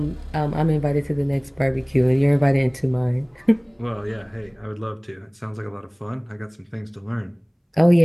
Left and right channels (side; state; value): both; identical; correlation 1.00